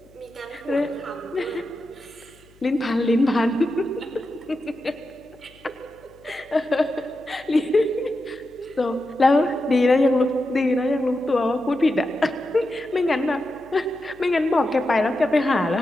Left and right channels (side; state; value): left; noise; hum, 28 dB below the sound